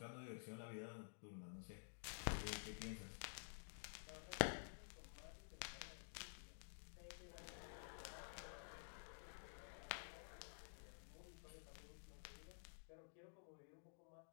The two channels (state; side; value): silent; right; digital silence